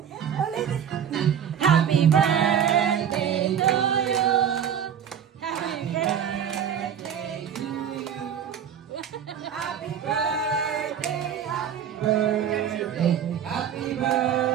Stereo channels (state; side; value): quieter; left; 8.6 dB